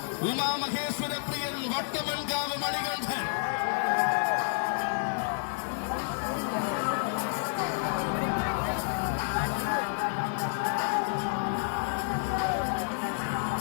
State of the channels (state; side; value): silent; right; digital silence